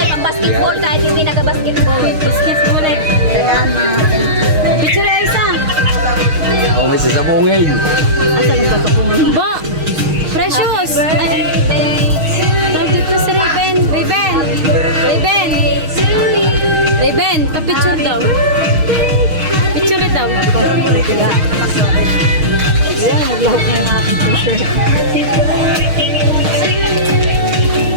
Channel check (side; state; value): left; late; 6.4 ms